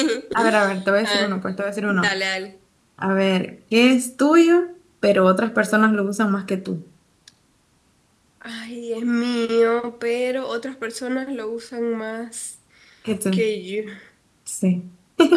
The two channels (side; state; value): both; identical; correlation 1.00